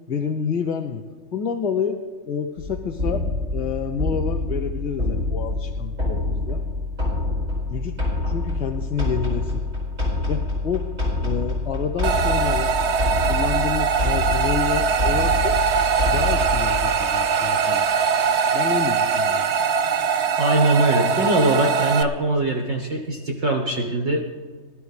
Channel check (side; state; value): left; late; 3.2 ms